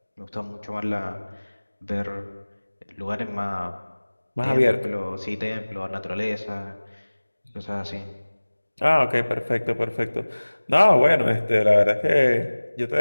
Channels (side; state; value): both; inverted; correlation -1.00